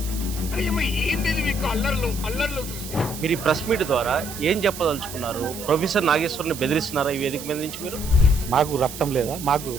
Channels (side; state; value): right; noise; hiss, 11 dB below the sound